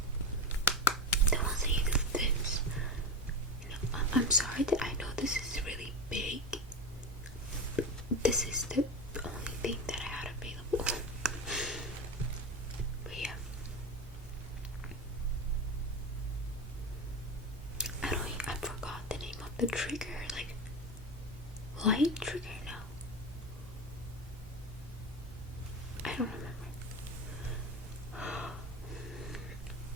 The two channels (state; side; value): normal; both; correlation 0.22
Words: the ones that you do this. I'm sorry that I know this is really big. This is the only thing that I had available. But yeah. I forgot the name of the trigger. Like light trigger? No. I don't remember.